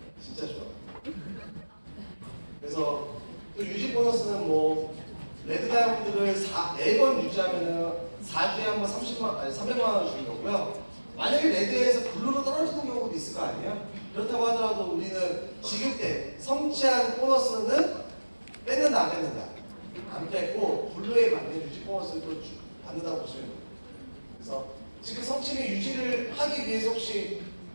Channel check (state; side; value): inverted; both; correlation -1.00